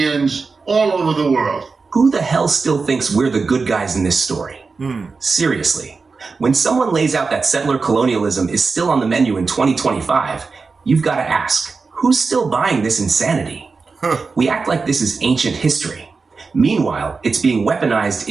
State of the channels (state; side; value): quieter; left; 4.5 dB